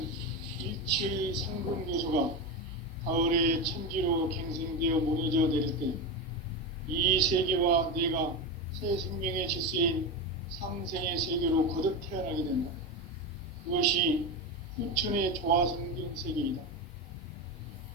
일체의 상금 요소가 가을의 천지로 갱생되어 무너져 내릴 때 이 세계와 내가 새 생명의 질서인 상생의 세계로 거듭 태어나게 된다. 그것이 후천의 조화성경 세계이다.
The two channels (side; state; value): both; normal; correlation 0.17